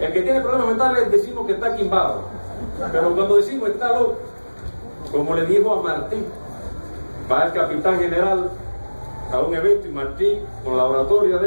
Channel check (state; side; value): inverted; both; correlation -1.00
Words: que tiene problemas mentales decimos que está quimbado, pero cuando decimos está loco, como le dijo a Martí, va el capitán general a un evento y Martí, con la oratoria